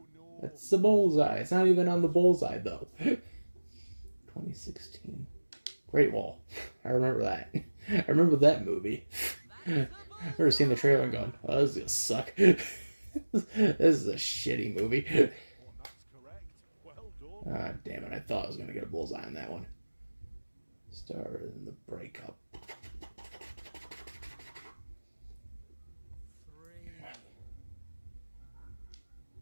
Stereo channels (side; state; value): both; inverted; correlation -1.00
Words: That's the bullseye. It's not even on the bullseye, though. 2016. Great Wall. I remember that. I remember that movie. I've never seen the trailer and gone, oh, this is gonna suck. This is a shitty movie. Ah, damn it. I thought I was gonna get a bullseye on that one. Star in the breakup.